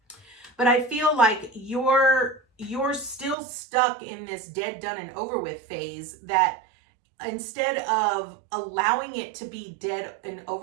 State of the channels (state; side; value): drops out; left; at 3.4 s